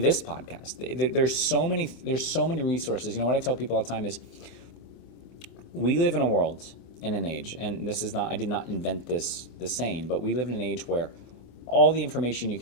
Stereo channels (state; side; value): late; right; 25 ms